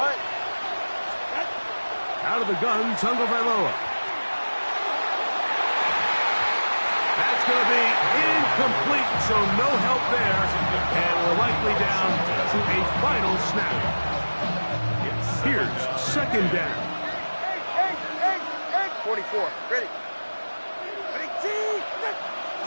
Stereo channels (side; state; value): both; inverted; correlation -1.00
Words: Out of the gun, Tagovailoa. That's going to be incomplete, so no help there, and we're likely down to a final snap. Here's 2nd down. 44. Ready.